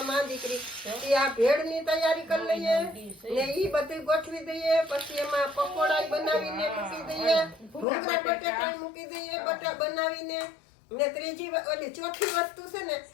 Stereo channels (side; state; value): right; drops out; at 7.9 s